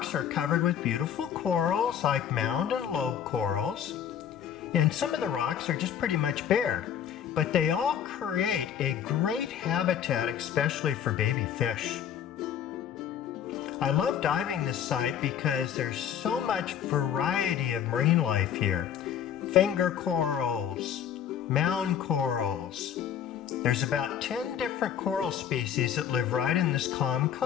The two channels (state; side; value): quieter; right; 9.0 dB